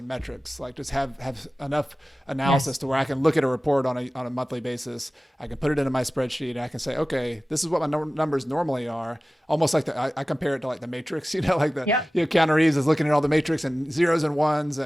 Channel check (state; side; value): normal; both; correlation 0.96